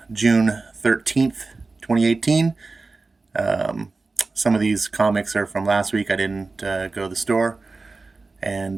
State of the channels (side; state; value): left; quieter; 3.7 dB